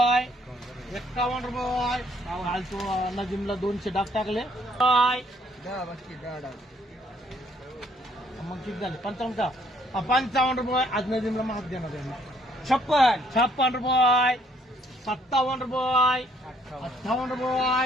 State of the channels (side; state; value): both; normal; correlation 0.65